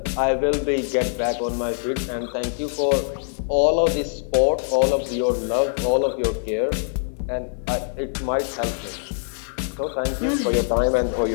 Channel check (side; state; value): right; silent; digital silence